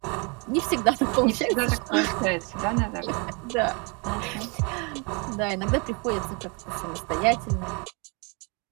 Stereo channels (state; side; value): quieter; left; 32.3 dB